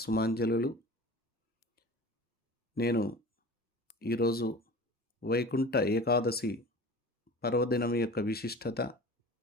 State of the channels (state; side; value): normal; both; correlation 0.38